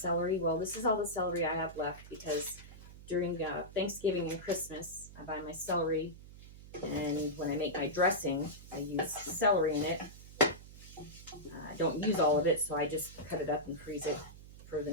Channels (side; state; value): right; noise; hum, 17 dB below the sound